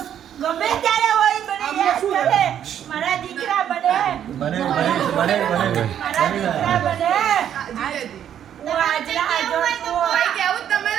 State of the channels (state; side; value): quieter; left; 9.8 dB